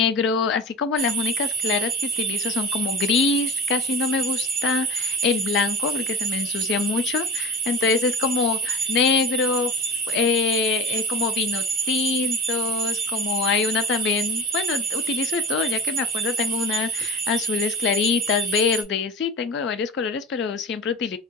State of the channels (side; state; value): both; normal; correlation 0.32